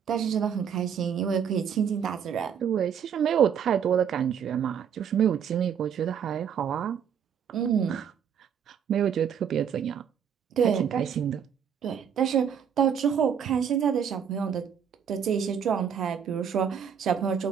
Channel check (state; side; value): quieter; left; 7.9 dB